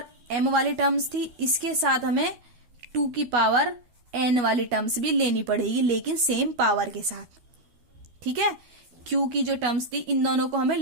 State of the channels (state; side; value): late; left; 12 ms